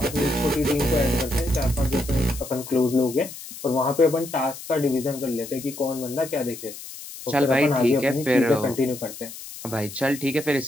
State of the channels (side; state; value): left; noise; hiss, 13 dB below the sound